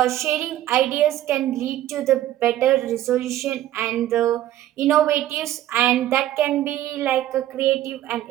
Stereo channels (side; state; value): left; quieter; 13.3 dB